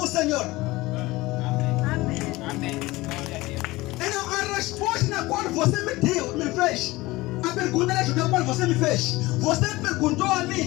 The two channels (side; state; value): right; quieter; 20.1 dB